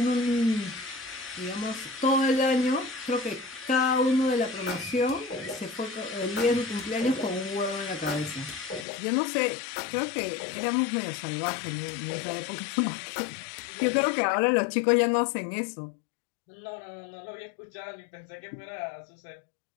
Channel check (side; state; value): right; drops out; at 8.8 s